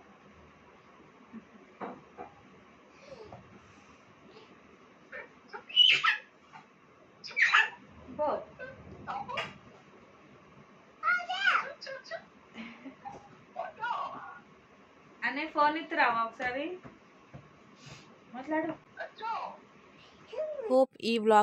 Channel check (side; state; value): both; identical; correlation 1.00